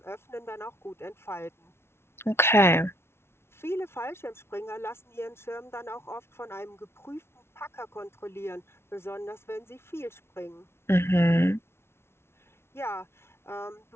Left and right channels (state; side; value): late; right; 0.12 ms